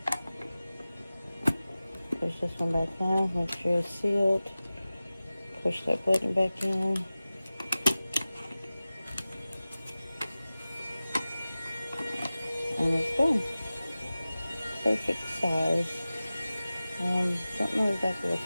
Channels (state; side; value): inverted; both; correlation -0.96